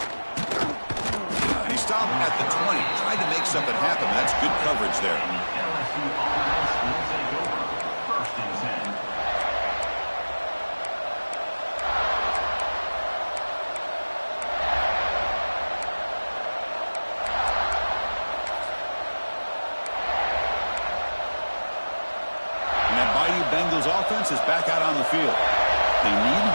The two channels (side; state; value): both; inverted; correlation -1.00